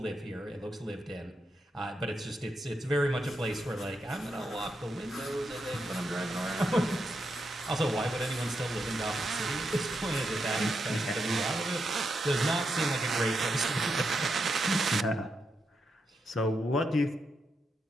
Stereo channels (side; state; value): both; normal; correlation 0.84